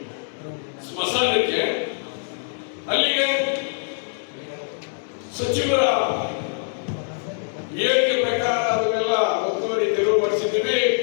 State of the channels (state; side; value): silent; right; digital silence